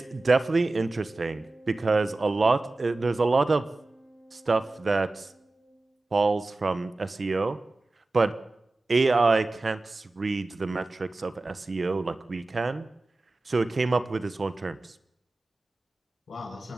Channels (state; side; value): quieter; left; 3.1 dB